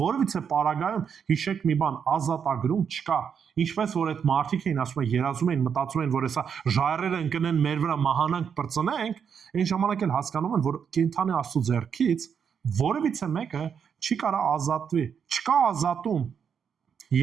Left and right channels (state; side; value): quieter; left; 7.2 dB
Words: պարագայում հիշեք մի բան, ազատագրում չկա։ Ինչպես որ այդ մարդիկ էին ասում են, երազում էին, մտածում են, որ հեսա ժայռերը ընկնեն մեր վրա մահանանք բրծնենք, այն ժամանակ էլ հասկանում են, որ կենթանի Աստծո ձեռքից որևիցե մեկը չի կարող ազատվի։ Չկա ազատում։